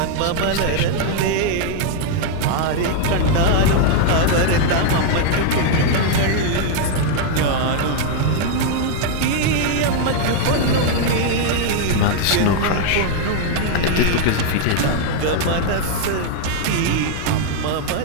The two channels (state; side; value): different; both; correlation 0.00